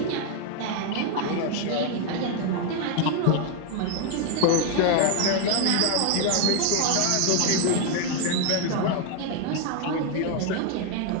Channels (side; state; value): both; different; correlation 0.01